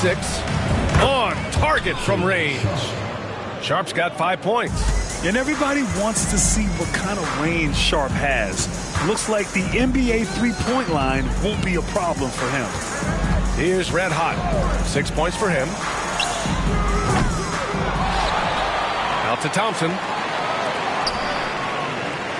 On target from range. Sharpe's got 5 points. And everybody wants to see what kind of range Sharpe has. Looks like the NBA three-point line won't be a problem for him. Here's Red Hot. 6 points for him. Out to Thompson.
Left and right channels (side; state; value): both; identical; correlation 1.00